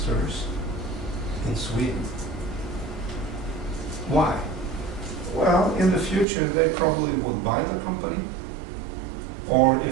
in Sweden. Why? Well, in the future they probably would buy the company, or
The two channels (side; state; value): left; drops out; at 6.2 s